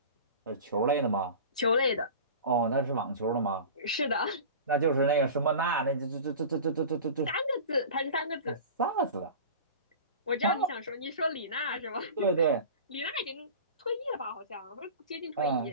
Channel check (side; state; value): both; inverted; correlation -0.36